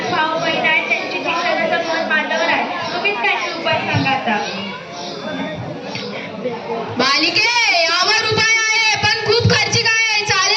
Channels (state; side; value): identical; both; correlation 1.00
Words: भाऊ बहीण आहेत, त्यांची शिक्षणाचा मन माझ्यावर आहे. तुम्हीच काहीतरी उपाय सांगा आता. बालिके, यावर उपाय आहे, पण खूप खर्चिक आहे.